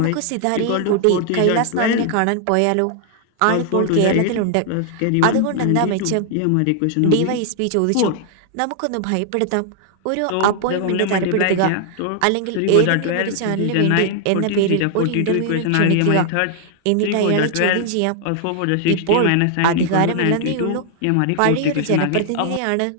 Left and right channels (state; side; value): different; both; correlation 0.00